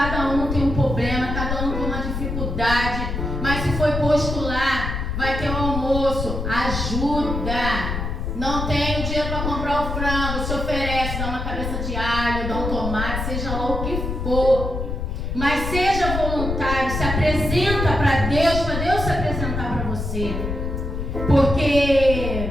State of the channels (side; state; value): left; noise; rumble, 3 dB below the sound